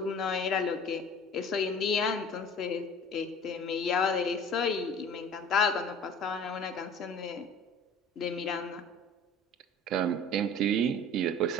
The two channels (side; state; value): both; normal; correlation 0.44